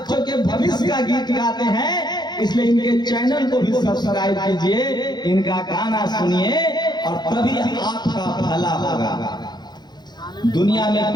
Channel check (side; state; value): right; late; 0.21 ms